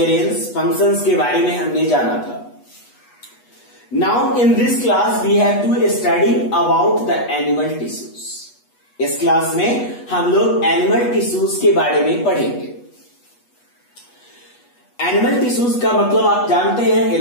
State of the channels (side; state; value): right; late; 8.2 ms